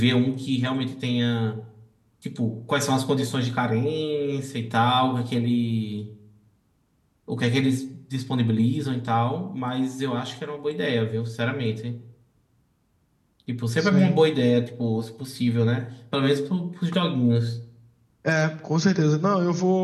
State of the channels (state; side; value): identical; both; correlation 1.00